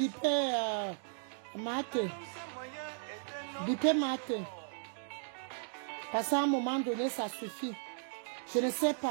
Mate. Bipé Mate. Parce qu'à un moment donné, ça suffit. Je ne sais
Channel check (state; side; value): silent; left; digital silence